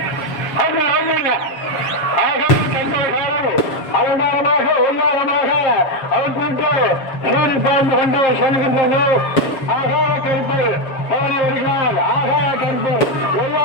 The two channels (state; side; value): late; right; 7.0 ms